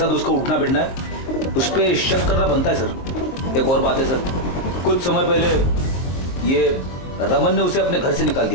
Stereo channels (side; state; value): right; late; 23 ms